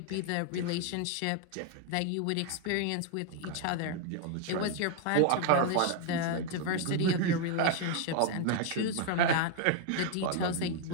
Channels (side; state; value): both; different; correlation 0.01